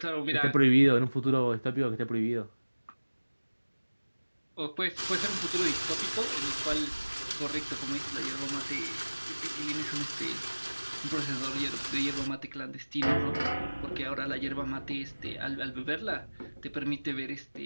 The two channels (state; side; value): inverted; both; correlation -1.00